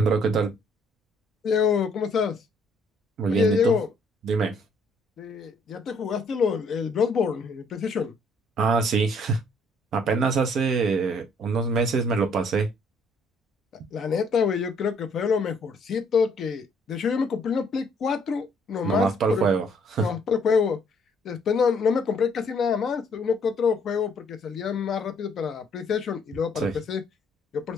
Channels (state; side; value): normal; both; correlation 0.65